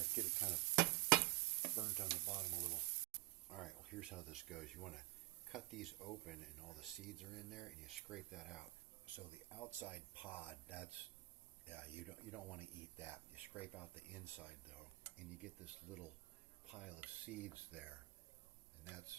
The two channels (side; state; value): left; quieter; 19.8 dB